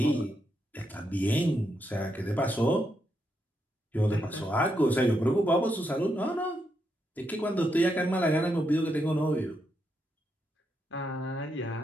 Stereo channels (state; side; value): normal; both; correlation 0.81